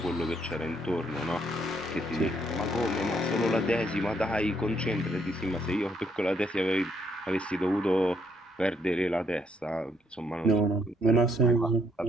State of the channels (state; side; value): normal; both; correlation 0.71